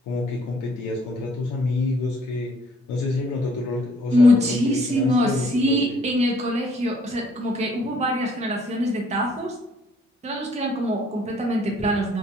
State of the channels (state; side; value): normal; both; correlation 0.63